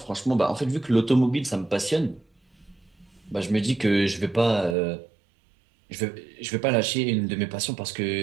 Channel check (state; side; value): drops out; left; at 4.8 s